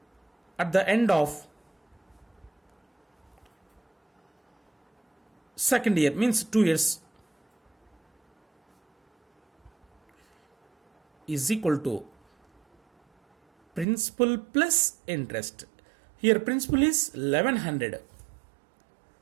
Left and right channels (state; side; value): drops out; left; at 13.9 s